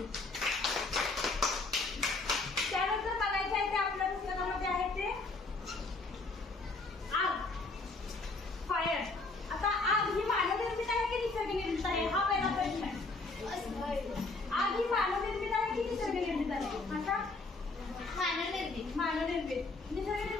त्यानंतर बघायचं आहे ते आपल्या पुस्तकामध्ये आहे ते आग, फायर. आता आग ही मानवनिर्मित आहे की निसर्गनिर्मित आहे हा पहिला प्रश्न आहे. आग ही मानवनिर्मित आहे की निसर्गनिर्मित आहे? आता मानवनिर्मित.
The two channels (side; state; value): right; quieter; 3.5 dB